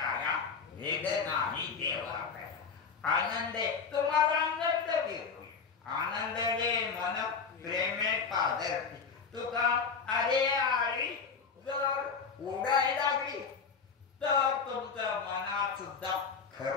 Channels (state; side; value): quieter; right; 5.6 dB